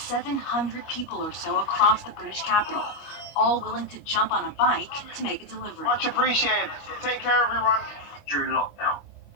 700 people or so across the British capital, all willing to jump on a bike to make a delivery. Much appreciated. Take care, everyone. During lockdown,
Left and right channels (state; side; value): late; right; 25 ms